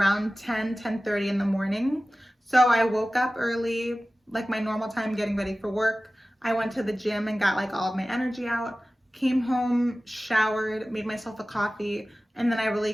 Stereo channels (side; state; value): both; normal; correlation 0.96